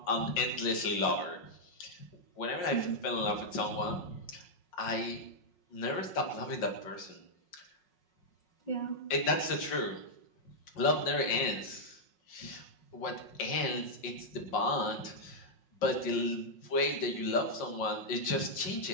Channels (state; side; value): late; right; 5.7 ms